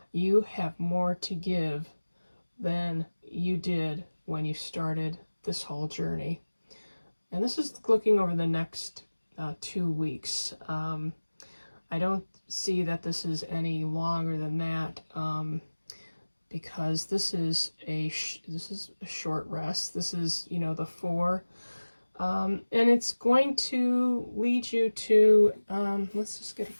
you have more to give than you did when you started this whole journey. And this is looking over the next 2 weeks. I don't see that this is any longer than that, because this is a short rest. This is, the 4, and it's going to lead you to let's just get a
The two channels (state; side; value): inverted; both; correlation -1.00